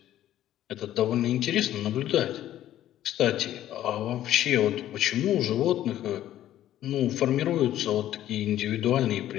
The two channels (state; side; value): quieter; right; 12.7 dB